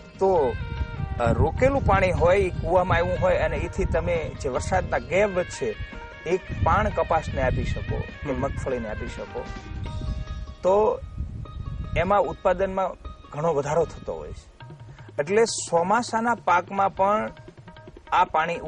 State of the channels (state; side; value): identical; both; correlation 1.00